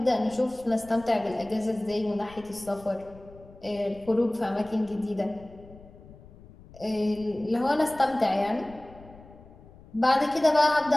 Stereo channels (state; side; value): noise; left; rumble, 21 dB below the sound